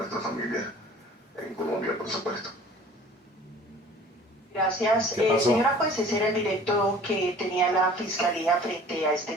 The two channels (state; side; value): normal; both; correlation 0.48